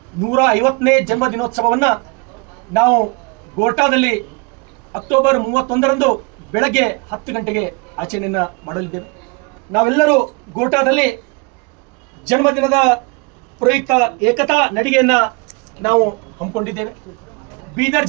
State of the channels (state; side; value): quieter; left; 29.3 dB